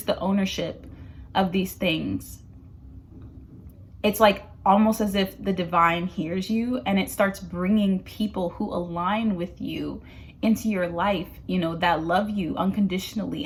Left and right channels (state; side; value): identical; both; correlation 1.00